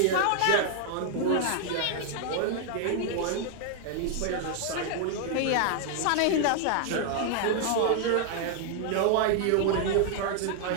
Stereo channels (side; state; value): both; different; correlation 0.00